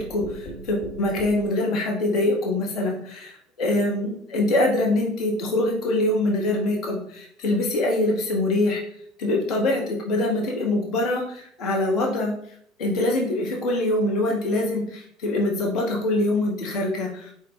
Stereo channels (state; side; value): normal; both; correlation 0.42